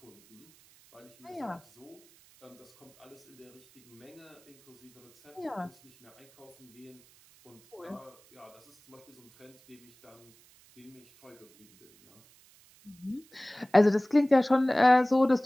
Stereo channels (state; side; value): noise; right; hiss, 28 dB below the sound